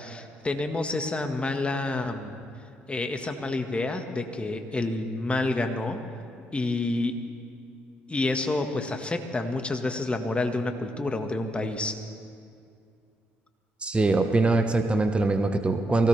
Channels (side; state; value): both; normal; correlation 0.80